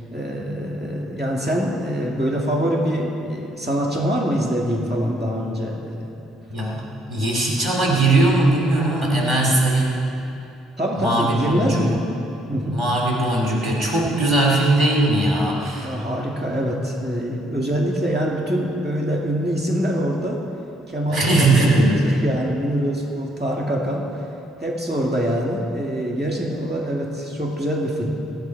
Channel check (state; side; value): normal; both; correlation 0.69